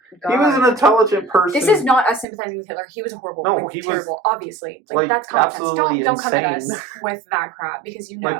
God. He was an intelligent person. This is not us sympathizing with Hitler. He was horrible. No, he terrible. Was obviously, like that's common sense. Don't come at us with that crap because you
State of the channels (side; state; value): left; drops out; at 2.2 s